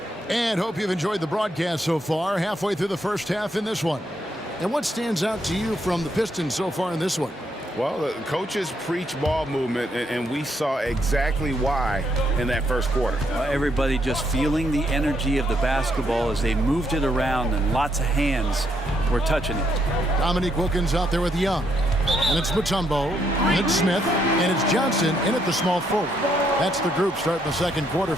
And hope you've enjoyed the broadcast so far. Halfway through the first half in this one. And what stands out to you from the Pistons so far in this one? Well, the coaches preach ball movement, and we saw exactly why in that first quarter. Everybody just feeling the energy of the basketball as they moved it around, and lots of hands were touching it. Dominique Wilkins out there with Young. And it's Mutombo, and it's Smith, and it's Johnson in at the small forward. That's the group starting the second quarter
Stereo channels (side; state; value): both; normal; correlation 0.75